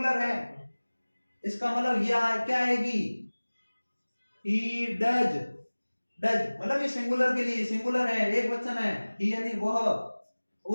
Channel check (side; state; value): both; inverted; correlation -1.00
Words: है, इसका मतलब यह क्या आएगी, ही डज, डज मतलब ये सिंगुलर के लिए, सिंगुलर है, एक वचन है, ही यानी वह।